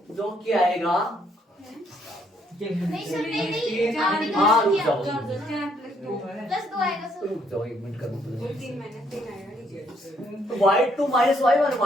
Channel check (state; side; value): normal; both; correlation 0.70